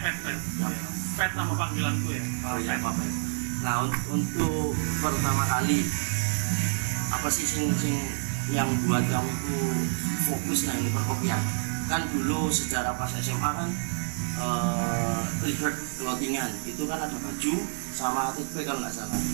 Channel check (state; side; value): silent; left; digital silence